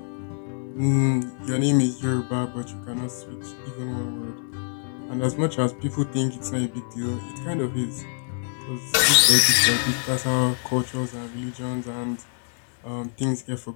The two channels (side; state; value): right; silent; digital silence